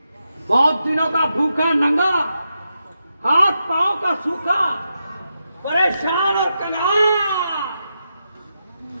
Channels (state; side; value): inverted; both; correlation -0.86